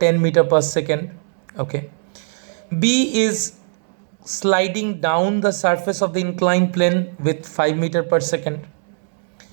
meter per second. Okay, B is sliding down the surface of the inclined plane with 5 meter per second.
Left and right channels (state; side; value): silent; left; digital silence